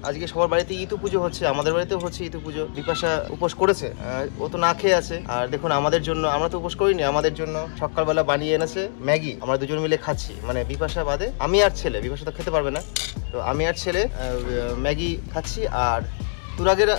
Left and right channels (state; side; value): silent; right; 63 dB below the other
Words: আজকে সবার বাড়িতে ইতু পুজো হচ্ছে, আমাদের বাড়িতেও হচ্ছে ইতু পুজো। বিপাশা উপোস করেছে, ও তো না খেয়ে আছে। আর দেখুন আমাদের জন্য, আমরা তো উপোস করিনি, আমাদের জন্য সকালবেলা বানিয়ে এনেছে ম্যাগি। আমরা দুজন মিলে খাচ্ছি, মানে বিপাশা বাদে আমি আর ছেলে। বিপাশা তো খেতে পারবে না, তো আমি আর ছেলে ম্যাগি খাচ্ছি। আর তুরাগের